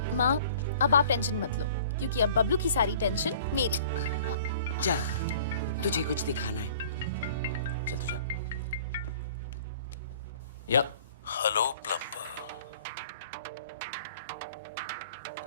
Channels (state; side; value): inverted; both; correlation -0.49